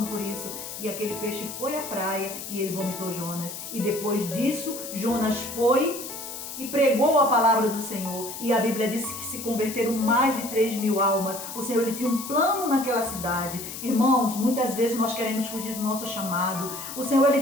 por isso. E aquele peixe foi à praia e ele vomitou Jonas. E depois disso, Jonas foi e pregou a palavra do Senhor. E a Bíblia diz que se converteram mais de 3.000 almas. O Senhor, ele tinha um plano naquela cidade. Irmãos, muitas vezes nós queremos fugir do nosso chamado. O Senhor,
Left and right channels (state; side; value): noise; left; hiss, 9 dB below the sound